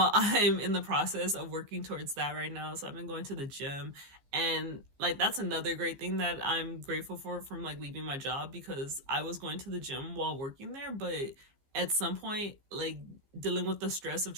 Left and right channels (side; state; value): left; late; 15 ms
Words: I'm in the process of working towards that right now. So I've been going to the gym, and like that's another great thing that I'm grateful for from like leaving my job, because I was going to the gym while working there, but at some point, like dealing with the stress of